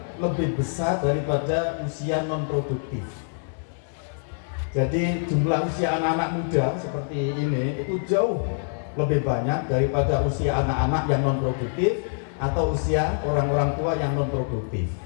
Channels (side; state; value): right; silent; 58 dB below the other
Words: lebih besar daripada usia non produktif. Jadi jumlah usia anak-anak muda seperti ini itu jauh lebih banyak daripada usia anak-anak yang non produktif atau usia orang-orang tua yang non produktif.